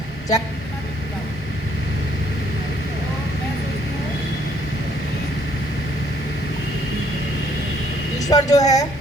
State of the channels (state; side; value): normal; both; correlation 0.65